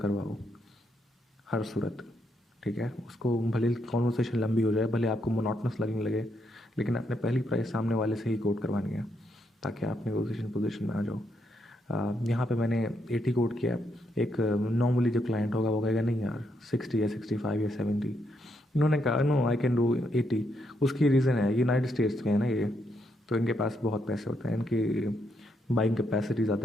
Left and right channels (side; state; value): both; normal; correlation 0.78